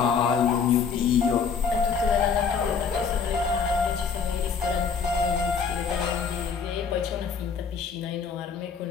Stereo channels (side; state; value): right; quieter; 6.0 dB